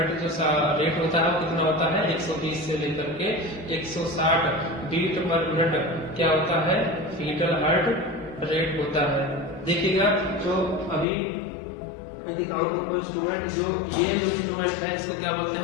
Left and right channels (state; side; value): drops out; right; at 11.1 s